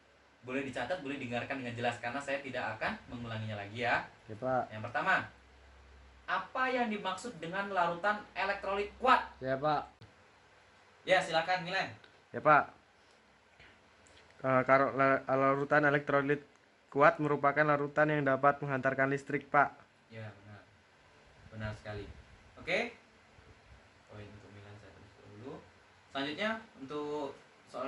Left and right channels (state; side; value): identical; both; correlation 1.00